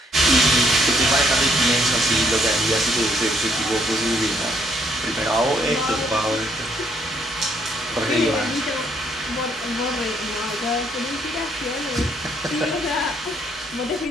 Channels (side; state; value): both; normal; correlation 0.69